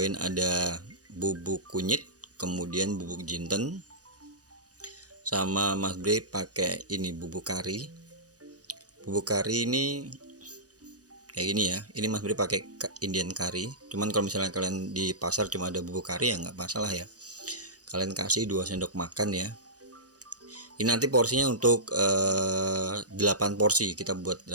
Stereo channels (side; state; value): left; late; 0.67 ms